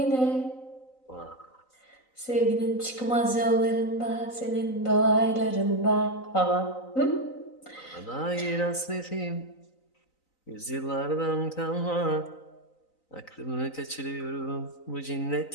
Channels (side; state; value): right; late; 3.9 ms